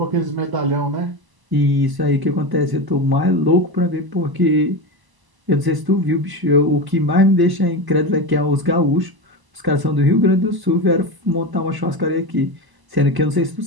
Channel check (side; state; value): left; late; 1.0 ms